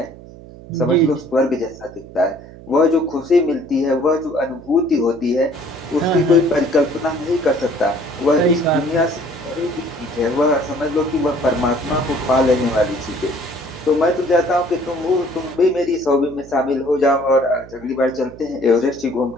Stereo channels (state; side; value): noise; right; hum, 18 dB below the sound